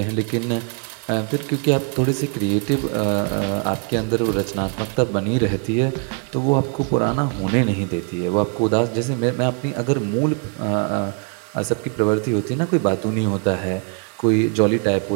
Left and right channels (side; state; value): left; quieter; 37.0 dB